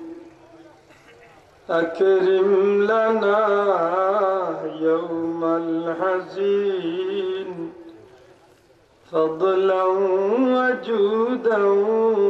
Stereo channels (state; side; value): identical; both; correlation 1.00